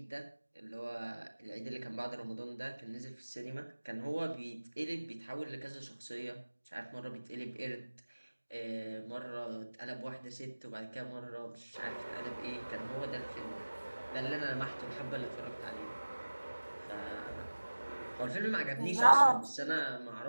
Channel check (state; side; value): inverted; both; correlation -1.00